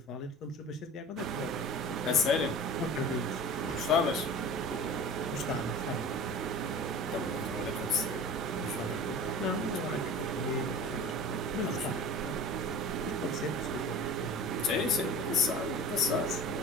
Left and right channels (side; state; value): both; normal; correlation 0.38